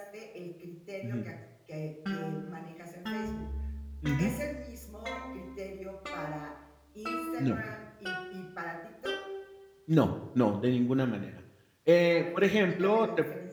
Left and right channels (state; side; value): identical; both; correlation 1.00